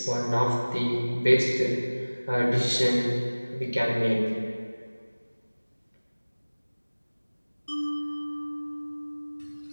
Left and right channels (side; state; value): both; inverted; correlation -1.00